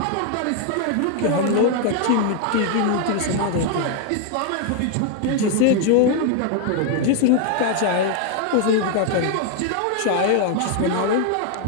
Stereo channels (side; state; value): both; different; correlation 0.00